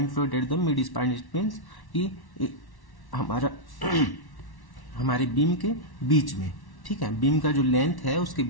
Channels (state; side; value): late; right; 1.1 ms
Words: load at the mid span it means कि हमारा हमारे बीम के बीच में, ठीक है, बीम का जो लेंथ है उसके